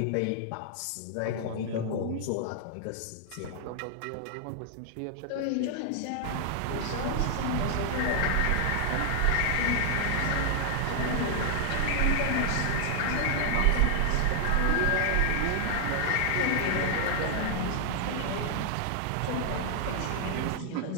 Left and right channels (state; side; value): different; both; correlation 0.00